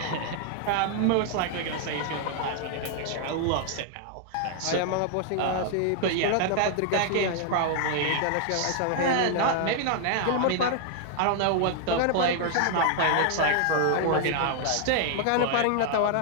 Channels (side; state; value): both; different; correlation 0.00